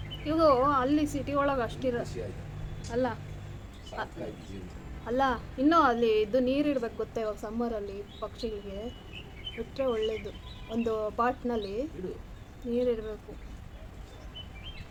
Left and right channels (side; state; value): both; identical; correlation 1.00